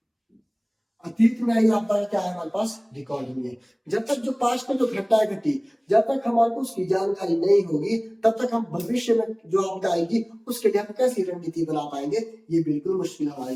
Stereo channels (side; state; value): both; identical; correlation 1.00